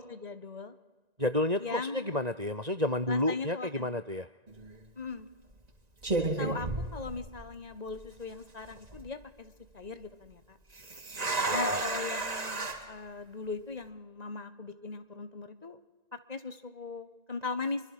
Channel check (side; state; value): left; late; 1.9 ms